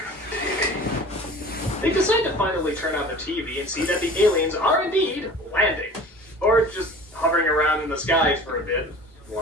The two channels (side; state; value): both; normal; correlation 0.41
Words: on the TV. They decide to finally turn on the TV and see that the aliens are indeed landing. Or just hovering around in the skies for a bit.